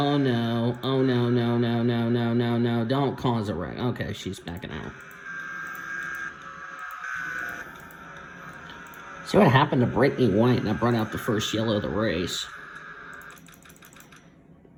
no, oh no, no, no, no, no, no, no, don't cause a wreck. Okay, she's backing out. See what happened to Brittany White, and that brought out the first yellow of the race.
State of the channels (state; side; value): identical; both; correlation 1.00